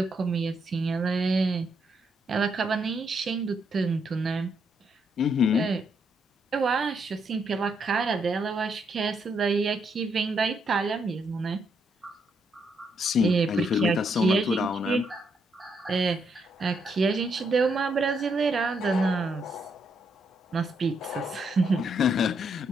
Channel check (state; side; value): normal; both; correlation 0.76